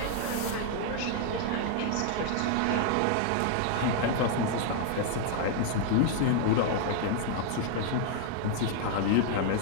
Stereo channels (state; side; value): different; both; correlation 0.00